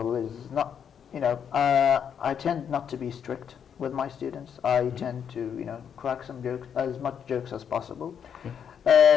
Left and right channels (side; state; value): right; quieter; 7.9 dB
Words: is not, I tend not to be strict with my students. I tend to, crack some jokes, as much jokes as possible.